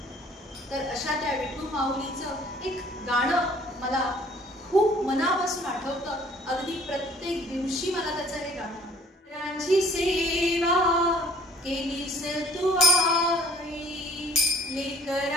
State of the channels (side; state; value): both; normal; correlation 0.54